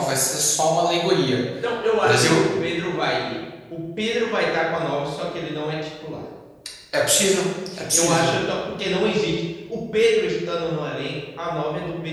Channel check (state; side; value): identical; both; correlation 1.00